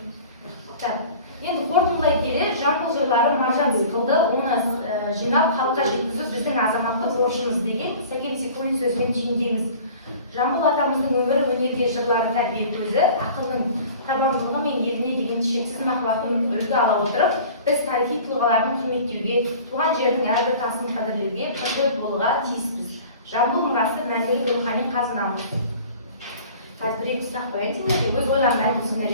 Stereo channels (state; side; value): inverted; both; correlation -0.44